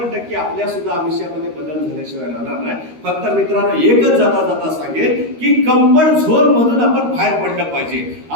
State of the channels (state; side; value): late; left; 13 ms